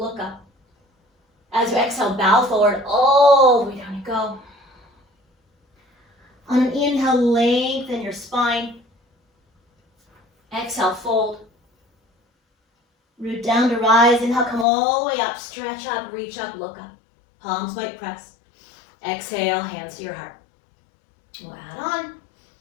up. As you exhale, bow forward, all the way down you go. On an inhale, lengthen your spine. Exhale, fold. Root down to rise. Inhale, come all the way up, stretch up, reach up, look up. Palms might press. Exhale, hands to your heart. We'll add on.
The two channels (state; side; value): drops out; right; at 14.7 s